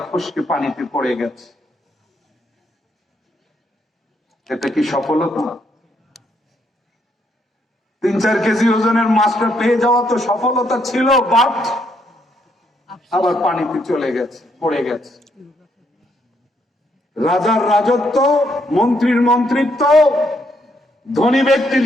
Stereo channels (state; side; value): normal; both; correlation 0.74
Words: ফসকে পানিতে পড়ে গেছে। এটা কি সফলতা? 3-4 কেজি ওজনের মাছটা পেয়ে যাওয়া তো সফলতা ছিল, বাট আবার পানিতে চলে গেছে, পড়ে গেছে। রাজার রাজত্ব, মন্ত্রীর মন্ত্রিত্ব, ধনী ব্যক্তির